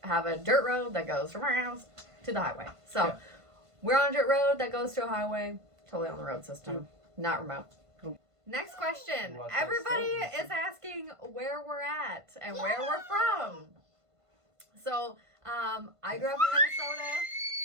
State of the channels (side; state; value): left; late; 1.5 ms